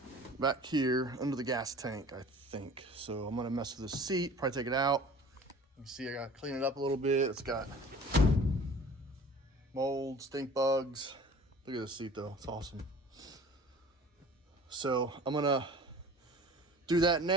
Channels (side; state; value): both; normal; correlation 0.45